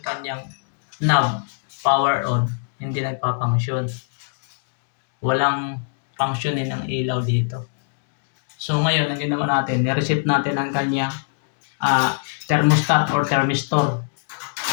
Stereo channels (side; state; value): right; silent; digital silence